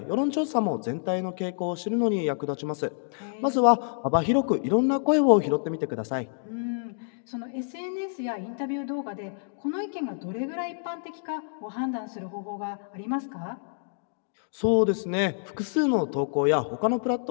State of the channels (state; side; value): silent; right; digital silence